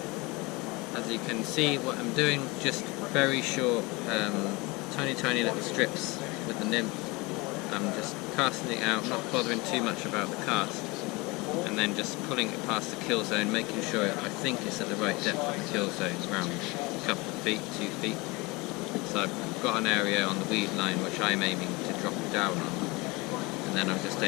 As you can see, what I'm doing, just very short, tiny little strips with the nymph. I'm just casting it out, not bothering too much about the cast, and then just pulling it past the kill zone, making sure I think it's at the right depth of the kill zone, around a couple of feet, 2 feet. So I've got an area on the weed line which I'm aiming to drop it down on, and then I'm just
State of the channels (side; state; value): right; quieter; 24.7 dB